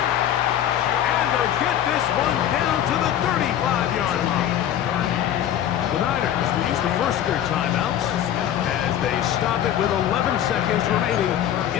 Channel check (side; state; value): right; quieter; 10.8 dB